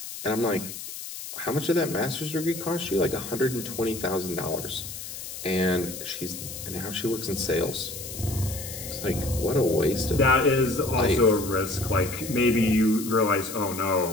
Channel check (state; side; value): noise; left; hiss, 10 dB below the sound